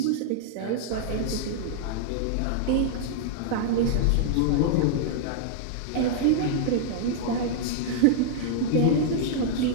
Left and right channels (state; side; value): different; both; correlation -0.01